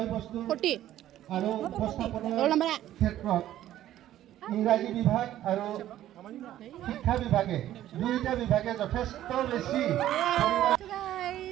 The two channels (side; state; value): left; quieter; 12.9 dB